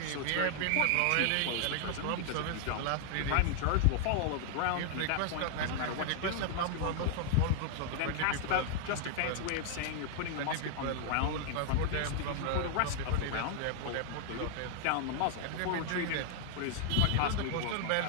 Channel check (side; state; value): both; different; correlation 0.00